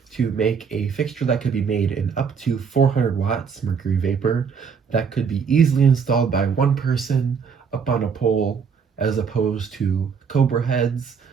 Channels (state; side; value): quieter; left; 6.2 dB